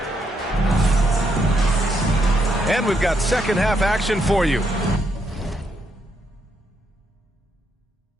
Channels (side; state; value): both; normal; correlation 0.77